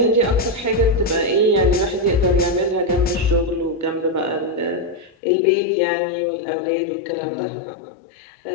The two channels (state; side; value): drops out; right; at 5.2 s